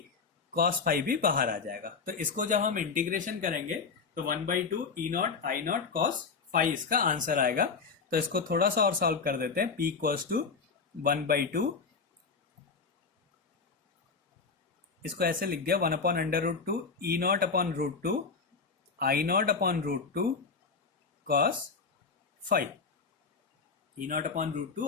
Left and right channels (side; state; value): right; quieter; 5.0 dB